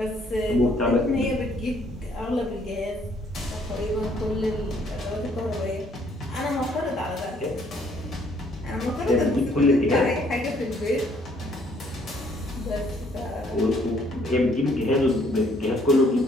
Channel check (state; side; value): normal; both; correlation 0.64